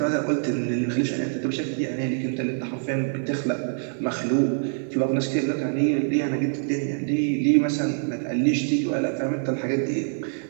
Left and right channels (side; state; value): left; silent; digital silence